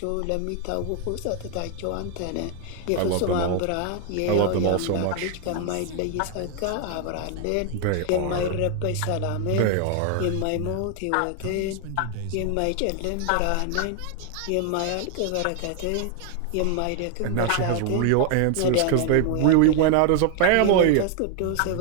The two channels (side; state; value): both; different; correlation 0.00